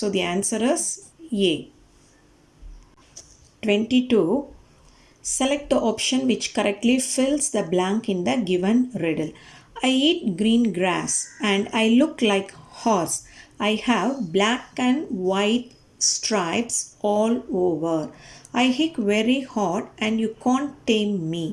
the answer is A. 22. Select the option which correctly fills the blank in the given riddle. I eat green grass and I look like horse. I have black and white stripes all over. I hit very hard and you can't tame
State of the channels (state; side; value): identical; both; correlation 1.00